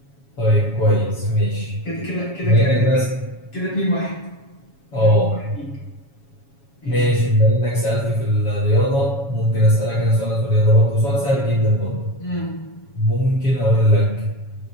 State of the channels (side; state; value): right; late; 7.2 ms